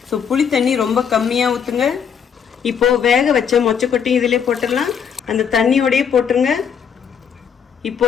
ஸோ புளி தண்ணி ரொம்ப கம்மியாக ஊற்றுங்க. இப்போது வேக வச்ச மொச்சக்கொட்டையும் இதிலே போட்டுடலாம். அந்த தண்ணியோடையே போட்டுருங்க.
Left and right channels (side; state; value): right; quieter; 7.4 dB